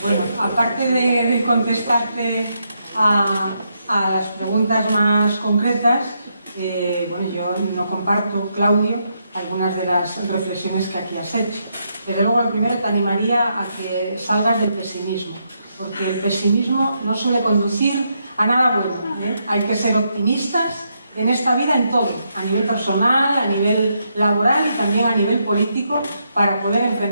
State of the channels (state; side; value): inverted; both; correlation -0.79